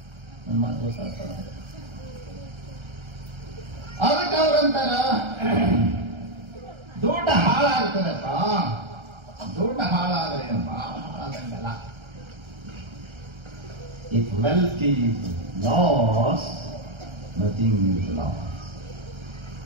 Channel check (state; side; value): late; left; 1.3 ms